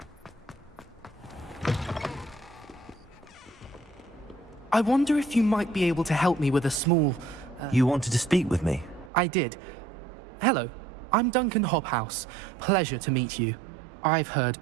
I wonder if you might be able to help me with a small... You wanted to speak with me? I did. Hello, I'm Duncan Hobhouse. Pleasure to meet you. I've heard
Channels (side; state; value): left; drops out; at 9.1 s